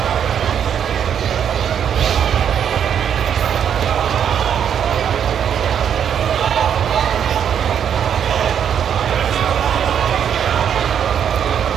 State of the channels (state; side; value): quieter; left; 8.5 dB